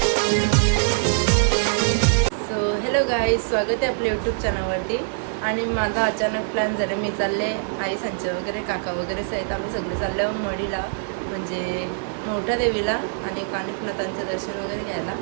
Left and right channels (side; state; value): left; silent; digital silence